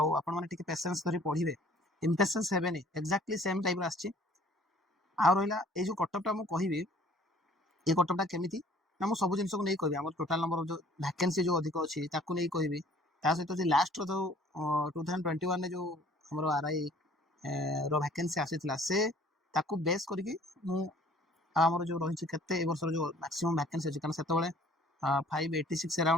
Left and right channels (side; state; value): both; normal; correlation 0.54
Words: आपण माने टिके पेशेंस धरि पढिबे इम्पेशेंस हेबेनी एक्जाक्टली सेम टाइप रा आछि आ रहिला ए जो कटअपटा मु कहिबी ए कटअपटा केमिति ना मु सब जिंस को नै कहबी हमर टोटल नंबर जो वैकेंसी जो अधिक अछि ताकू नै कहबी ता सहित जे लास्ट रो 2021 ने जो हमर आरआई रो वैकेंसी आसीतला से ताकू बेस करके मु हमर जो रहिछि केते ए वर्ष जो मैक्सिमम वैकेंसी अछि कारण सेते बेले 586